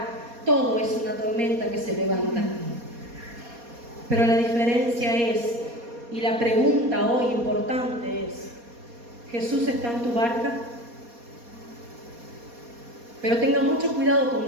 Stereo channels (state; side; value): late; left; 4.2 ms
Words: todo es una tormenta que se levanta. Pero la diferencia es, y la pregunta hoy importante es, ¿Jesús está en tu barca? Pero tenga mucho cuidado